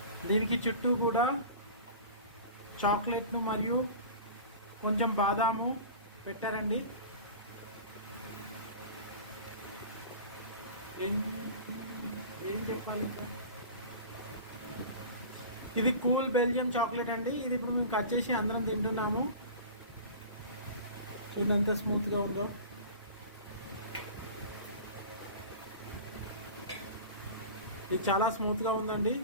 దీనికి చుట్టూ కూడా చాక్లెట్ను మరియు కొంచెం బాదాము పెట్టారండి. ఏం చెప్పాలి, ఇది కూల్ బెల్జియం చాక్లెట్ అండి. ఇది ఇప్పుడు మేము కట్ చేసి అందరం తింటున్నాము. చూడండి ఎంత స్మూత్గా ఉందో. ఇది చాలా స్మూత్గా ఉందండి.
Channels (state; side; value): inverted; both; correlation -0.37